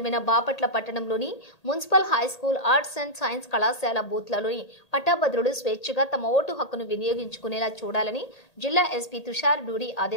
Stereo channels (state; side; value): late; right; 1.8 ms